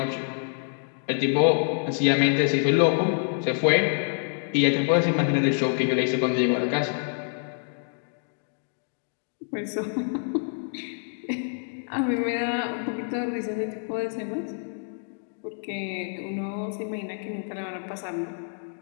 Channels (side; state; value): right; silent; digital silence